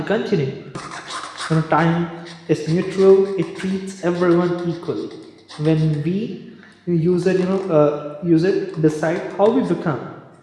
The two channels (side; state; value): both; identical; correlation 1.00